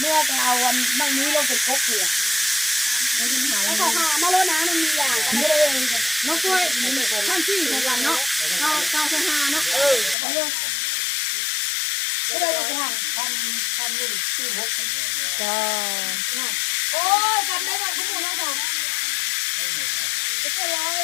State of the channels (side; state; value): right; drops out; at 10.2 s